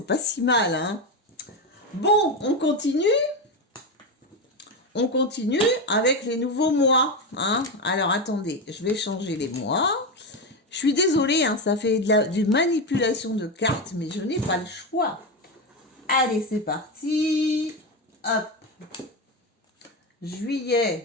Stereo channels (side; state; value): both; normal; correlation 0.14